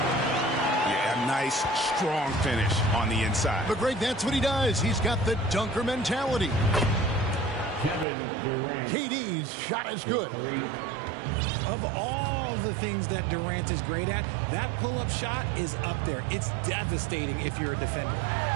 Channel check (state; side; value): drops out; left; at 8.1 s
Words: Yeah, a nice, strong finish on the inside. But, Greg, that's what he does. He's got the dunker mentality. KD's shot is good. Of all the things that Durant is great at, that pull-up shot is up there. It's devastating if you're a defender.